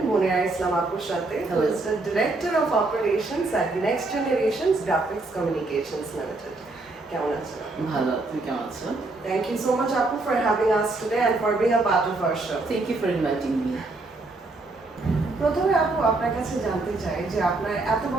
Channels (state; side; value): quieter; left; 3.2 dB